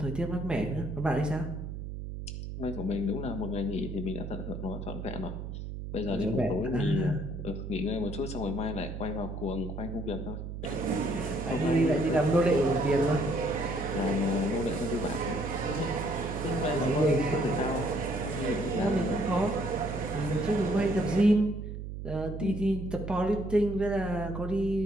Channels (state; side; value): noise; right; hum, 7 dB below the sound